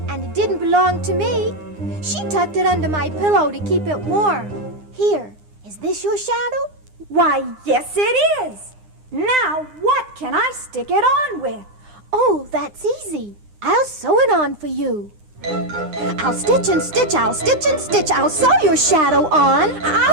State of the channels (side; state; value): left; late; 9.8 ms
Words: and it didn't belong to me. She tucked it under my pillow to keep it warm. Here, is this your shadow? Why, yes it is. Now, what can I stick it on with? Oh, that's easy. I'll sew it on for you. I'll stitch and stitch, I'll stitch and stitch, I'll sew your shadow on.